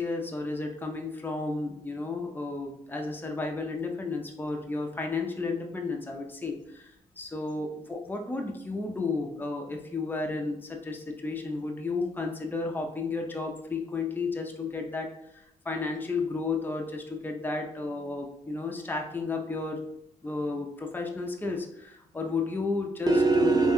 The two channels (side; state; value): both; normal; correlation 0.73